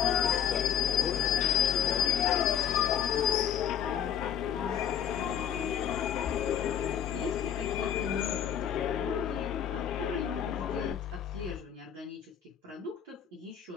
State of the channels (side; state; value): right; quieter; 9.3 dB